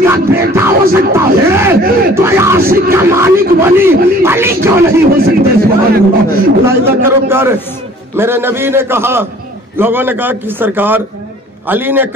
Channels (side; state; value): both; normal; correlation 0.51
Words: बेटा हो सकता है तो आशिक का मालिक वली अली क्यों नहीं हो सकते। सुभान अल्लाह करो प्यार। मेरे नबी ने कहा, लोगों ने कहा कि सरकार अली ने